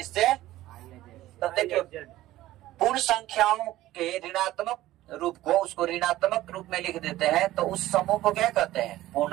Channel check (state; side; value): quieter; left; 15.5 dB